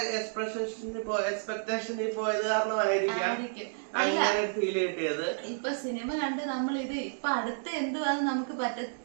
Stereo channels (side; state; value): left; silent; digital silence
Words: എക്സ്പെക്ടേഷനിൽ പോയത് കാരണമായിരിക്കാം അങ്ങനെ ഫീൽ കിട്ടിയത്. ഇപ്പൊ സിനിമ കണ്ട് നമ്മൾ ഇത് ഇപ്പൊ അടുത്ത എന്തുവാന്ന് നമുക്ക്